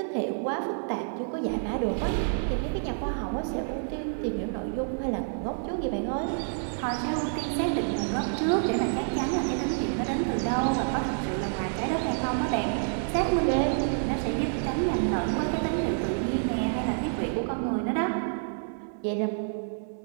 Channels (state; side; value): silent; left; digital silence